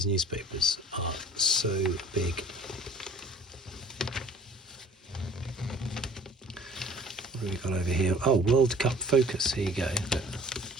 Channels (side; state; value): both; normal; correlation 0.50